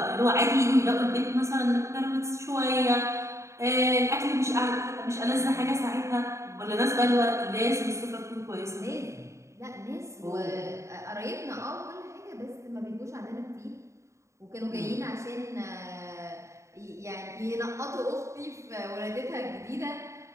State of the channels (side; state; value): left; late; 0.14 ms